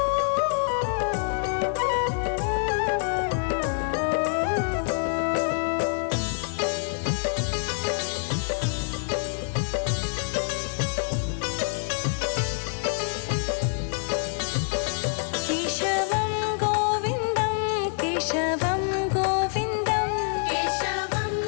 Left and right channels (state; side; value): silent; right; 58 dB below the other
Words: केशवं गोविन्दं केशवं गोविन्दं, केशवं